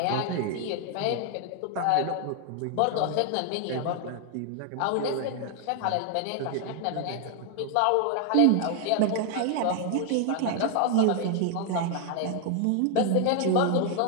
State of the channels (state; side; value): different; both; correlation 0.00